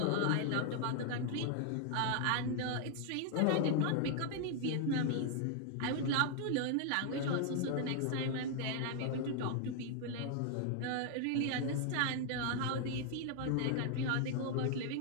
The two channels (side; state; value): both; different; correlation 0.00